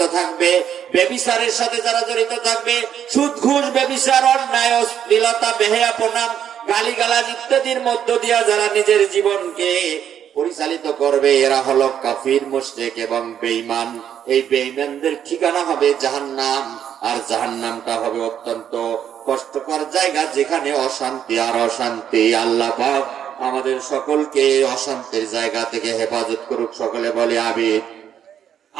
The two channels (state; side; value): quieter; left; 9.3 dB